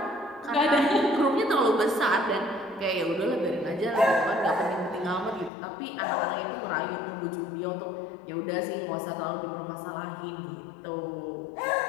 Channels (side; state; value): right; drops out; at 5.5 s